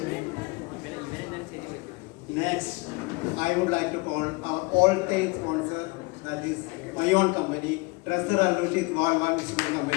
Next, I would like to call our all-time sponsor, that is my own company, Treasure Alushit Golwan Municipal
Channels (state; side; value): quieter; right; 25.6 dB